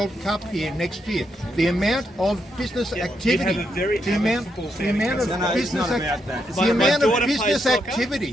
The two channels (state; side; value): normal; both; correlation 0.80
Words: Cup here next year. The amount of business activity, have a very the avid amount football of fan. business